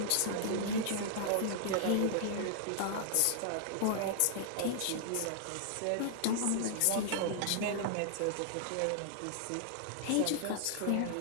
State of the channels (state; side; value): different; both; correlation -0.01